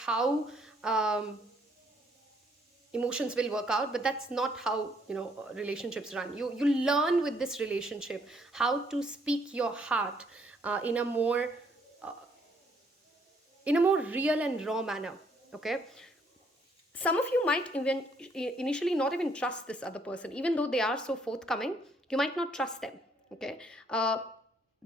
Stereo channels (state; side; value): normal; both; correlation 0.68